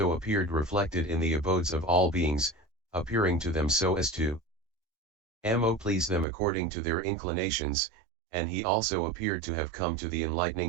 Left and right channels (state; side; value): drops out; left; at 6.2 s